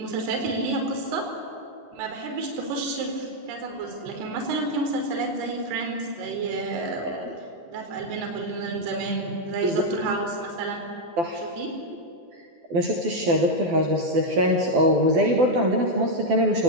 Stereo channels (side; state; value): left; late; 12 ms